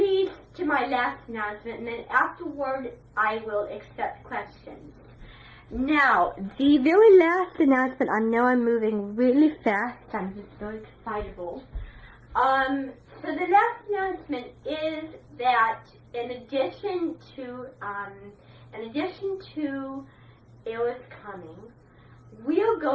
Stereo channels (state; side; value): identical; both; correlation 1.00